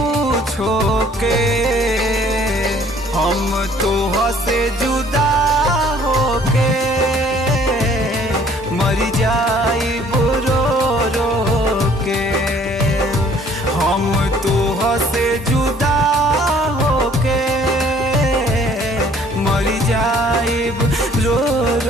छोके हम तोह से जुदा होके मर जाइबू रो रो के हम तोह से जुदा होके मर जाइब रो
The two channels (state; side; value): normal; both; correlation 0.58